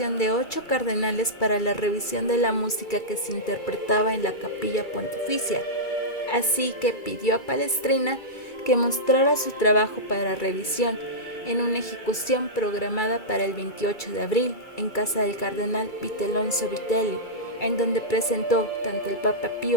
de 8 cardenales para la revisión de la música que se interpretaba en la capilla pontificia. Así que pidió a Palestrina que mostrara su trabajo para revisión en una ejecución programada para el 28 de abril en casa del cardenal Vitellonso Vitelli, en donde presentó tanto al Papa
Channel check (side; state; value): right; late; 2.3 ms